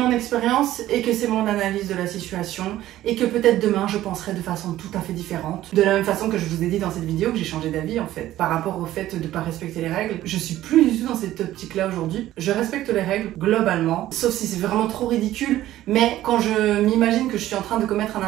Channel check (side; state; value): left; quieter; 14.2 dB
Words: expérience et que c'est mon analyse de la situation. Et que peut-être demain, je penserai de façon tout à fait différente. De la même façon que je vous ai dit dans cette vidéo que j'ai changé d'avis en fait. Par rapport au fait de ne pas respecter les règles. Je suis plus du tout dans cette optique-là aujourd'hui. Je respecte les règles globalement. Sauf si c'est vraiment trop ridicule. Mais quand je m'imagine que je suis en train de commettre un